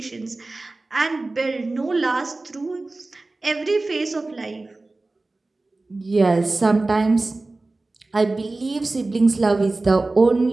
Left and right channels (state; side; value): quieter; left; 3.2 dB